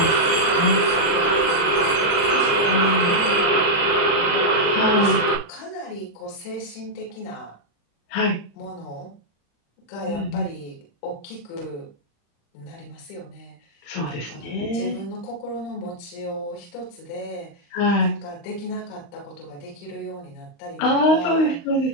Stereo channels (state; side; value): late; right; 35 ms